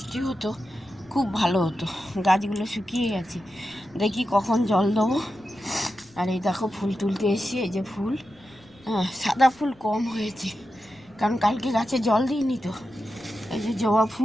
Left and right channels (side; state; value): left; noise; rumble, 29 dB below the sound